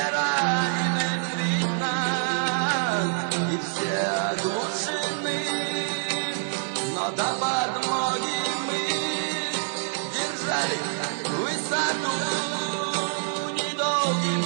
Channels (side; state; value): left; silent; 61 dB below the other